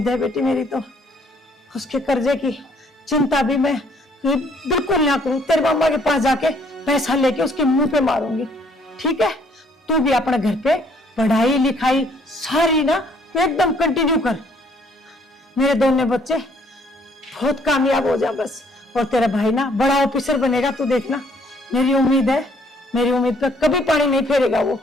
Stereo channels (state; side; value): normal; both; correlation 0.64